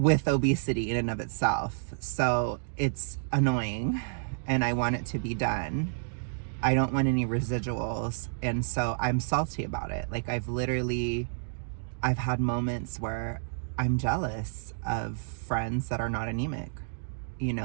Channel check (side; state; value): left; silent; digital silence